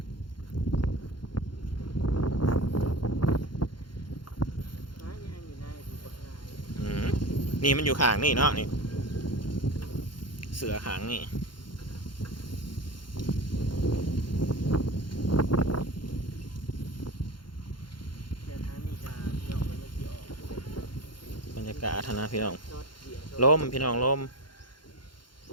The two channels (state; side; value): late; right; 0.72 ms